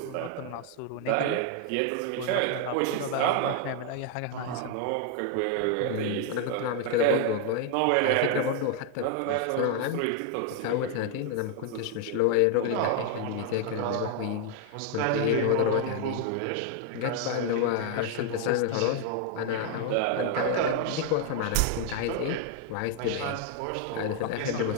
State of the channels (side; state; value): both; different; correlation 0.00